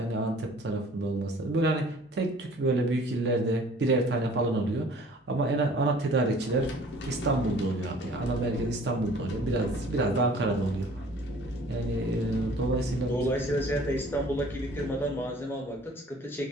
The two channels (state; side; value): normal; both; correlation 0.51